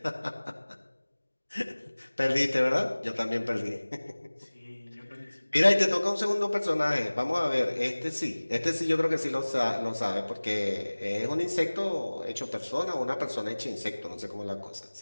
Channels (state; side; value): inverted; both; correlation -1.00